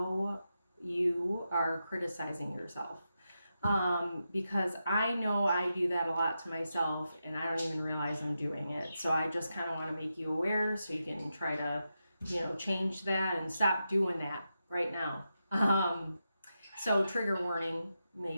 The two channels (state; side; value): inverted; both; correlation -0.88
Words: you are criticizing yourself. Because I know I do that a lot to myself and I don't even realize I'm doing it. So I just kind of want to make you aware so you can try to, change that and stop doing that right now. So trigger warning,